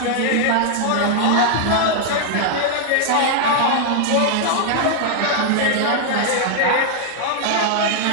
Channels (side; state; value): both; different; correlation 0.00